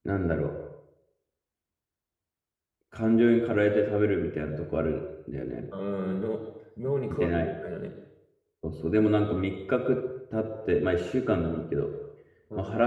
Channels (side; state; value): both; identical; correlation 1.00